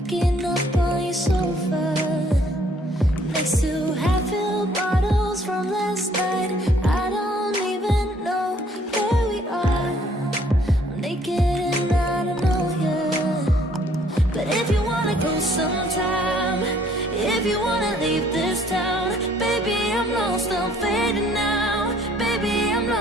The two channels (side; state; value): both; normal; correlation 0.62